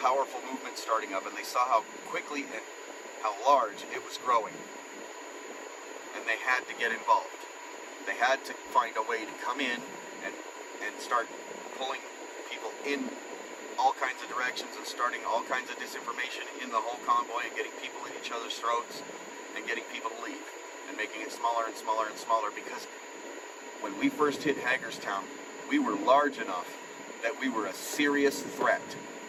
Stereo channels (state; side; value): identical; both; correlation 1.00